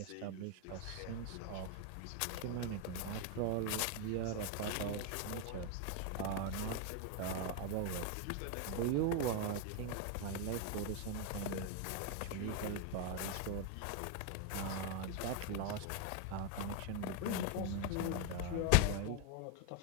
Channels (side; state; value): both; different; correlation 0.01